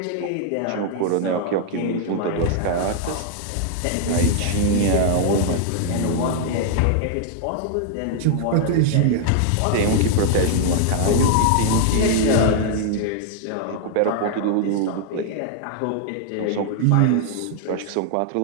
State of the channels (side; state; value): both; different; correlation 0.00